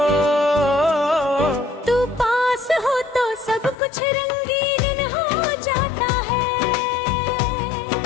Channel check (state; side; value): drops out; right; at 3.8 s